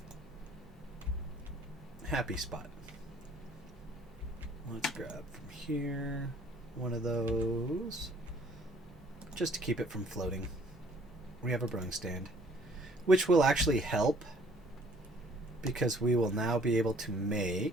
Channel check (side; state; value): both; normal; correlation 0.58